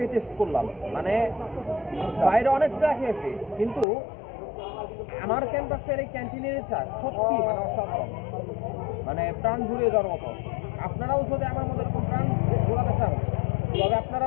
টেস্ট করলাম। মানে বাইরে অনেক চা খেয়েছি, কিন্তু আমার ক্যাম্পাসের এই ক্যান্টিনের চা সত্যি মানে অসাধারণ, মানে প্রাণ জুড়িয়ে যাওয়ার মতো। আপনারাও যদি আমার মতো এরকম প্রাণ জোড়াতে চান, তবে আপনারা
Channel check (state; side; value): drops out; right; at 3.9 s